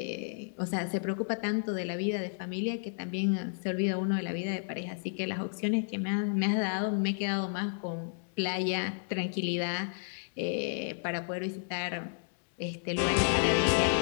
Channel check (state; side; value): silent; right; digital silence